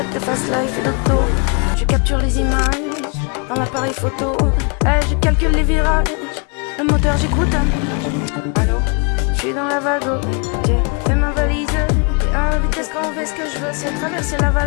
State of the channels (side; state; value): right; quieter; 34.8 dB